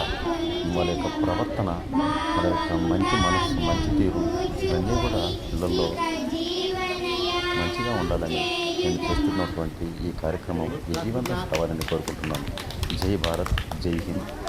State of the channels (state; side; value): identical; both; correlation 1.00